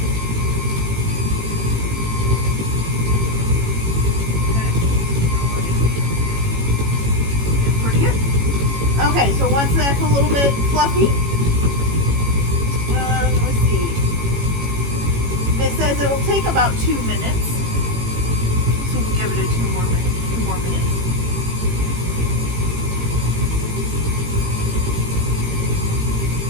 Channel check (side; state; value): left; late; 18 ms